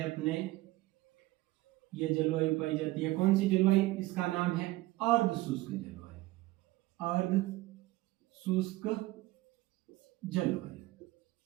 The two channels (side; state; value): left; quieter; 18.8 dB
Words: अपने ये जलवायु पाई जाती है, कौन सी जलवायु, इसका नाम है अर्ध शुष्क जलवायु, अर्ध शुष्क जलवायु,